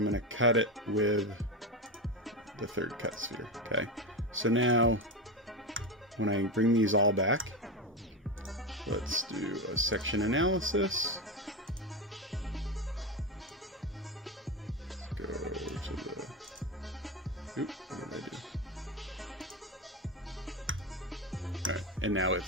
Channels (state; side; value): normal; both; correlation 0.16